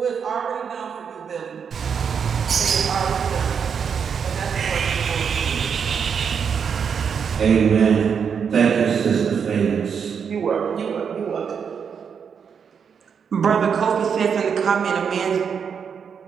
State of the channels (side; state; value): left; quieter; 6.8 dB